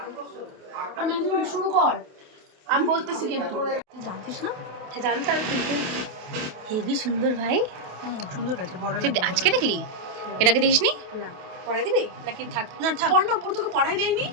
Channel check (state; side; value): late; left; 28 ms